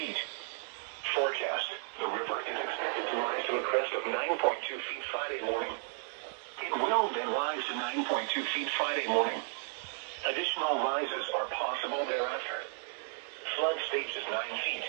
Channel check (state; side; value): silent; left; 55 dB below the other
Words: Forecast. The river is expected to rise to a crest of 9.2 feet Friday morning. It will then rise to 9.2 feet Friday morning. Additional rises are possible thereafter. Flood stage is 9 feet.